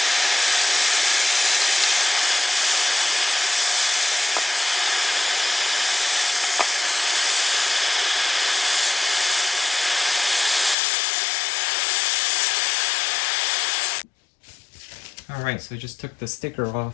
Alright, so I just took the sticker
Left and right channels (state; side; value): drops out; right; at 10.8 s